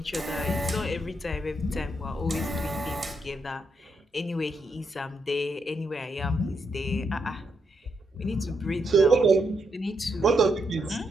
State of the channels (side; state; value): both; normal; correlation 0.80